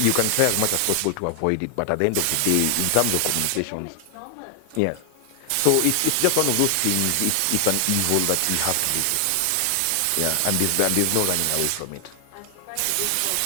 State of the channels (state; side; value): different; both; correlation 0.00